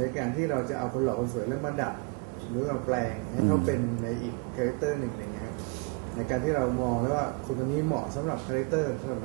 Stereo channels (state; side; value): quieter; left; 27.7 dB